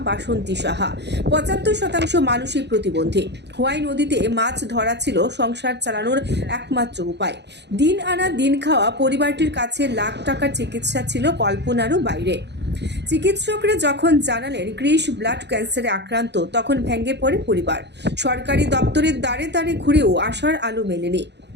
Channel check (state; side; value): late; left; 0.50 ms